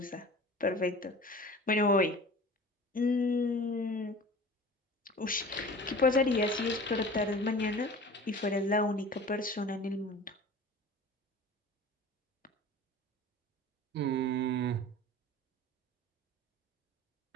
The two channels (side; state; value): both; normal; correlation 0.40